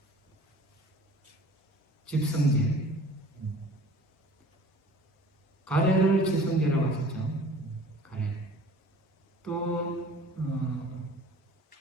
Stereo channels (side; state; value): both; normal; correlation 0.47